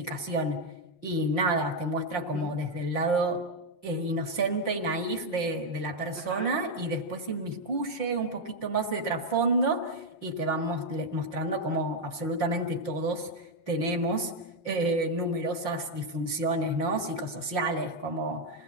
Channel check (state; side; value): late; right; 5.7 ms